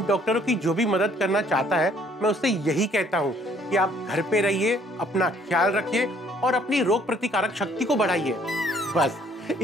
डॉक्टरों की जो भी मदद करना चाहता है, मैं उससे यही कहता हूँ कि आप घर पे रहिए, अपना ख्याल रखिए और अपनी रोग प्रतिकारक शक्ति को बढ़ाइए। बस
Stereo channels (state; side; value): normal; both; correlation 0.62